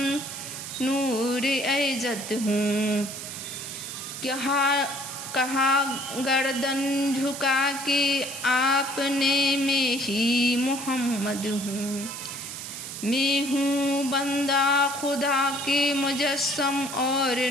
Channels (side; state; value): right; noise; hiss, 9 dB below the sound